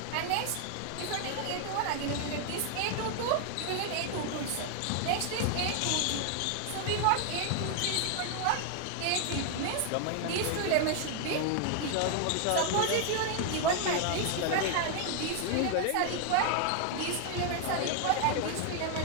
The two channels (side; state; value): both; different; correlation 0.00